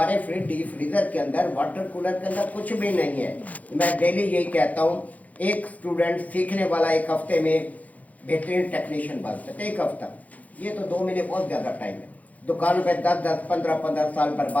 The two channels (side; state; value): right; late; 0.074 ms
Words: डीप फ्रीजर के अंदर, वाटर कूलर के अंदर कुछ भी नहीं है। मैं डेली यही कहता हूँ, एक स्टूडेंट सीखने वाला एक हफ्ते में बेहतरीन टेक्नीशियन बन सकते। एक हफ्ता, ये तो 2 महीने बहुत ज़्यादा टाइम है। दुकानों पे 10-10, 15-15 साल